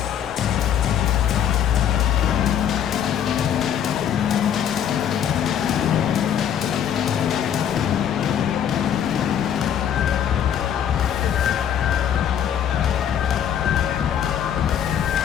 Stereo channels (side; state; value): right; quieter; 9.3 dB